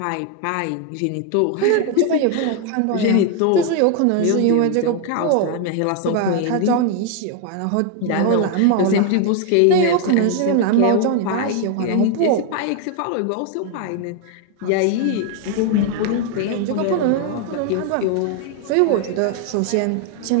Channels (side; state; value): both; different; correlation 0.01